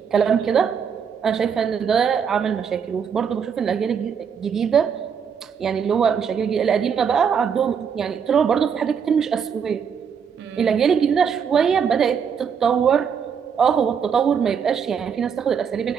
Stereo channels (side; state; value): left; quieter; 7.0 dB